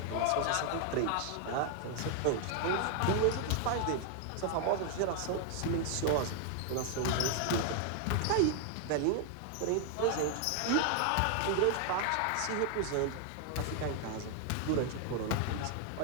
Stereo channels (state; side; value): different; both; correlation 0.00